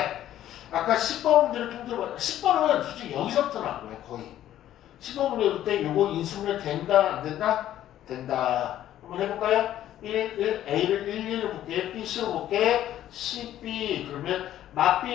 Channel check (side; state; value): right; quieter; 12.3 dB